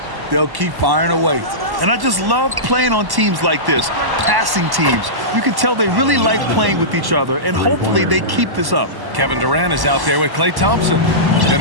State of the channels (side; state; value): left; late; 1.1 ms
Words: they'll keep firing away. And I just love playing on teams like this, passing teams. You can tell they really like playing with each other, and hopefully they keep this up. Kevin Durant is out there with Klay Thompson. Then